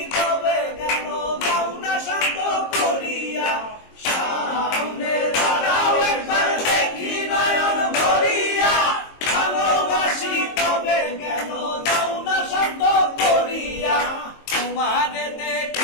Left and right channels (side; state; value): right; late; 22 ms